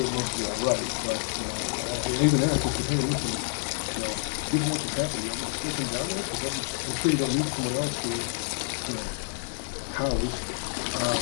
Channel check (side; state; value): right; silent; digital silence